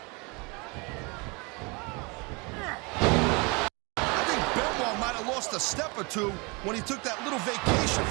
I think Benoit might have lost a step or two when he took that little vacation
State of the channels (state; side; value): quieter; left; 29.1 dB